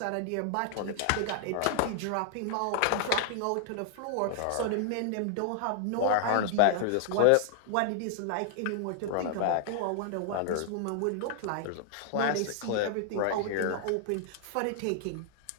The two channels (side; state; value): both; different; correlation 0.00